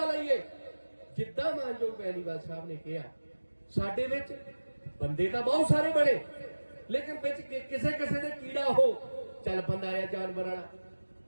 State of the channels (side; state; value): both; inverted; correlation -1.00